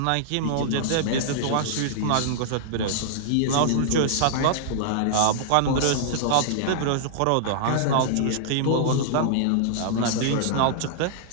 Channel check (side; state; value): both; different; correlation -0.01